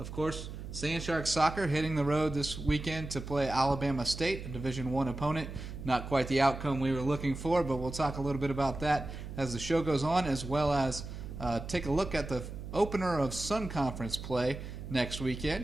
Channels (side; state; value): right; noise; hum, 9 dB below the sound